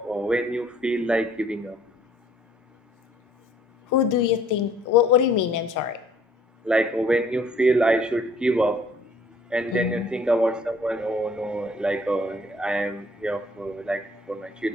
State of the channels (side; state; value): both; normal; correlation 0.58